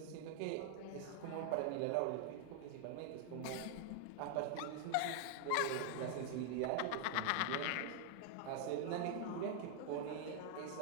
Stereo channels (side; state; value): both; different; correlation 0.00